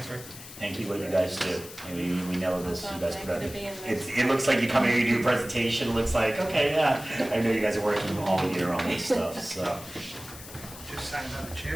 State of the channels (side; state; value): left; noise; hiss, 15 dB below the sound